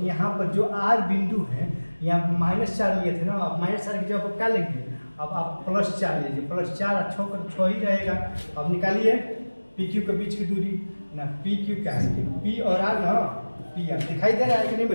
यहाँ पर जो आर बिंदु है यहाँ -4 लिए थे ना, अब -4 की जगह पर क्या लेंगे, अब आप +4 लीजिए, +4 और 6 ही रहेगा। अब निकालिए पी क्यू के बीच की दूरी ना, पी क्यू क्या है, पी और आर ना, पी आर दिखाई दे रहा है कि नहीं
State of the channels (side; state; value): both; inverted; correlation -1.00